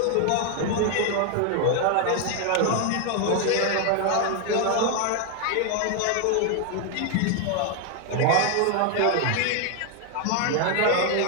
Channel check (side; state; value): both; different; correlation 0.00